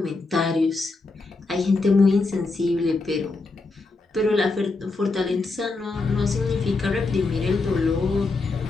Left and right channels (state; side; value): quieter; right; 3.6 dB